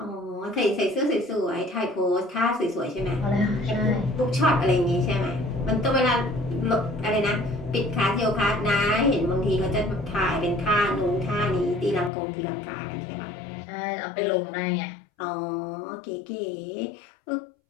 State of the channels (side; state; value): right; drops out; at 12.1 s